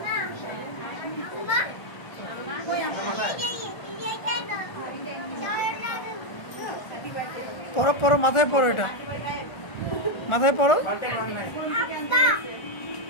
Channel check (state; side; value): late; right; 1.4 ms